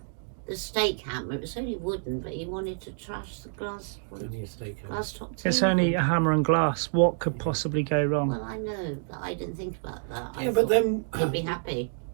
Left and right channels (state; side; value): silent; left; digital silence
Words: stake hammer. It was only wooden, but he wanted to trash the glass Only a steakhouse. glass top table. It's only a hammer and glass. What could possibly go wrong? Well, I know, but I didn't think about that. I Yeah, but thought then he'd be happy.